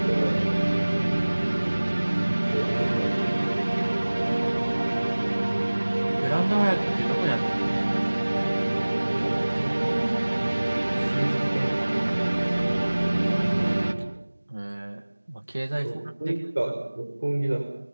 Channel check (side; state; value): both; inverted; correlation -1.00